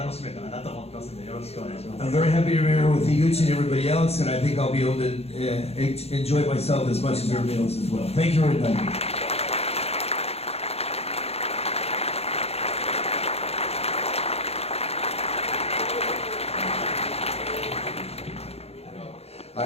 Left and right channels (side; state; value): right; late; 0.30 ms